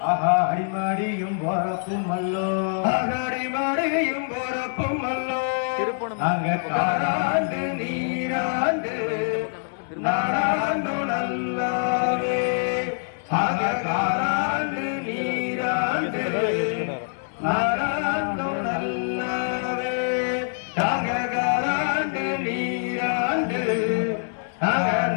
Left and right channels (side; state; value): right; silent; digital silence